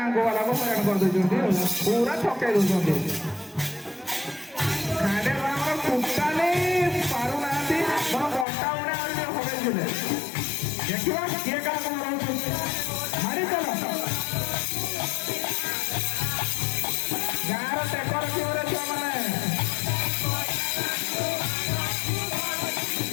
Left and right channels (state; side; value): drops out; right; at 8.5 s